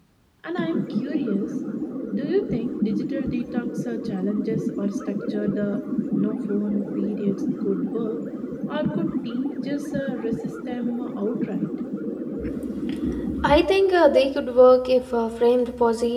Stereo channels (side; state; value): both; identical; correlation 1.00